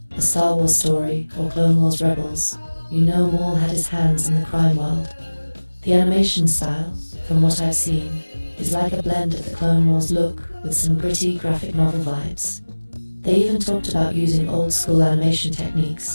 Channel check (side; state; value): both; inverted; correlation -1.00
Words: A Star Wars Story, or Clone Wars Rebels, you know Maul had his hands in the crime world. The animation style, from what I've seen, is like a blend of the Clone Wars look with some gritty graphic novel vibes. They even talked about using old-school animation